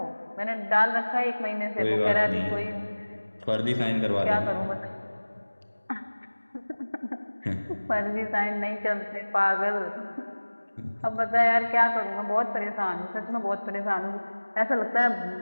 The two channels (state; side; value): inverted; both; correlation -1.00